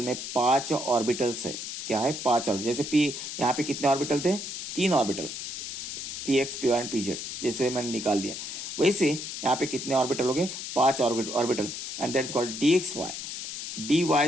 में 5 ऑर्बिटल्स है। क्या है 5 ऑर्बिटल, जैसे पी यहाँ पे कितने ऑर्बिटल थे 3 orbital px py and pz, जैसे मैंने निकाल लिया वैसे यहाँ पे कितने ऑर्बिटल हो गए 5 orbital and that is called dxy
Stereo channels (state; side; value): noise; left; hiss, 7 dB below the sound